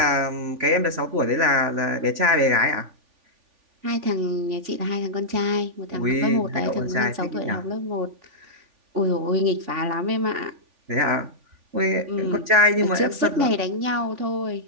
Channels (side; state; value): left; late; 3.5 ms